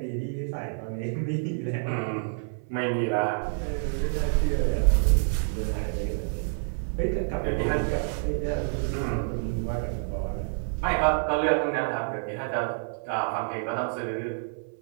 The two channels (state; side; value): silent; left; 58 dB below the other